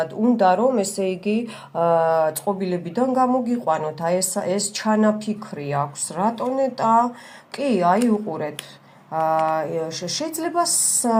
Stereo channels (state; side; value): identical; both; correlation 1.00